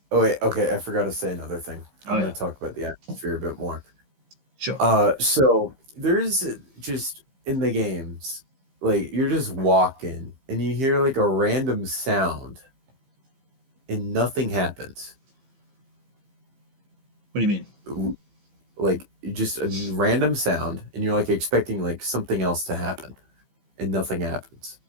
Oh wait, okay, I forgot to say another thing. I'm Oh, gonna yeah. talk about the atmosphere a bit more. Sure. So there's just in the games, like you're just walking and you hear like a random sound and nothing happens. What do you mean? Like just a random sound and you're like expecting like something else to happen and nothing happens.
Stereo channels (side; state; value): left; late; 15 ms